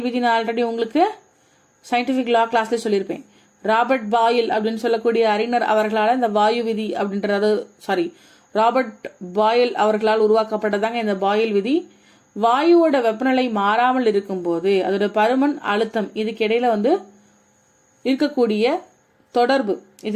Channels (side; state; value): both; identical; correlation 1.00